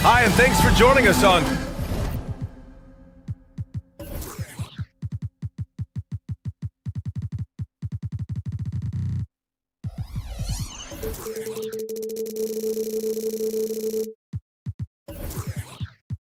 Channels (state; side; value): identical; both; correlation 1.00